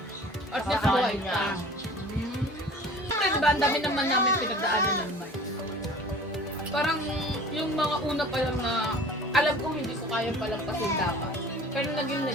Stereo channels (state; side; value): normal; both; correlation 0.44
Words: At least buhay ka. Siyempre, diba, ang dami naman namin pinagdaanan ng Mike. Parang yung mga una pa lang na alam ko hindi ko kaya palampasin dapat. Pero naging